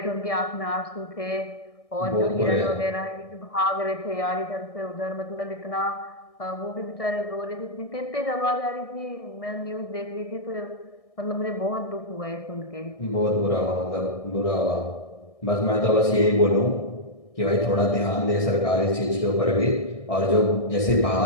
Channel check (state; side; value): late; right; 1.6 ms